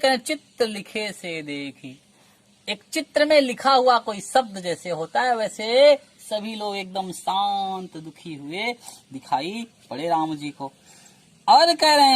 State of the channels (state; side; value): identical; both; correlation 1.00